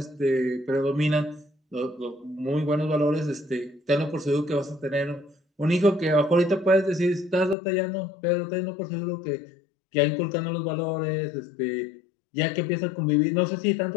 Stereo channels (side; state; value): right; drops out; at 7.6 s